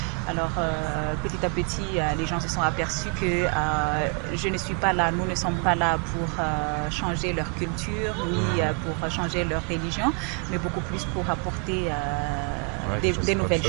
Alors petit à petit, les gens se sont aperçus que je ne suis pas là, nous ne sommes pas là pour changer leur culture, ni pour changer leur religion, mais beaucoup plus pour apporter des nouvelles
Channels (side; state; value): left; quieter; 36.0 dB